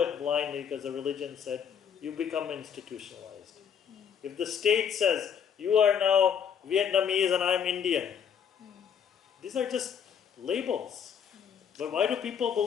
blindly because the religion said, you become institutionalized. If the state says, you are now Vietnamese and I'm Indian, these are just labels. But why do people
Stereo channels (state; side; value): quieter; right; 7.8 dB